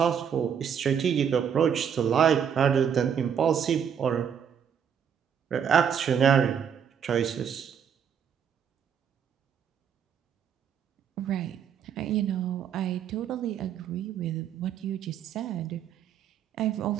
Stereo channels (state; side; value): quieter; left; 8.0 dB